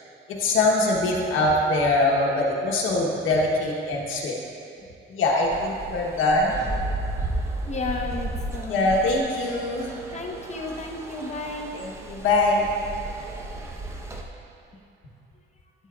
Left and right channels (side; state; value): both; normal; correlation 0.30